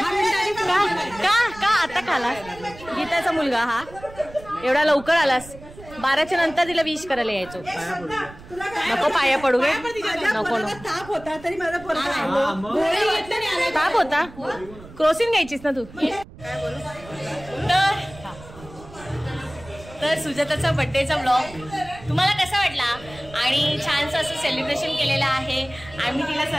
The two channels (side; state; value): right; noise; rumble, 18 dB below the sound